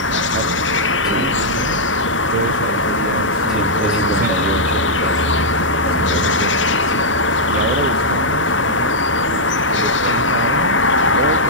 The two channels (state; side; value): normal; both; correlation -0.07